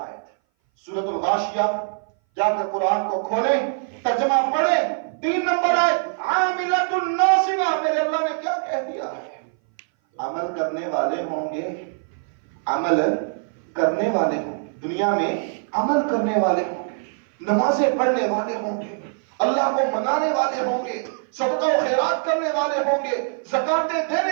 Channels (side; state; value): left; silent; 59 dB below the other